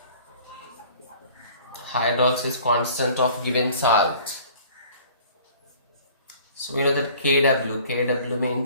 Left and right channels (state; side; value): inverted; both; correlation -0.50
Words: constant of given salt. So we know that KW